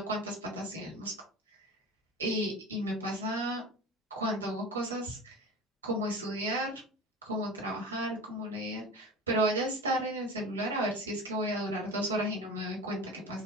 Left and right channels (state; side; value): normal; both; correlation 0.33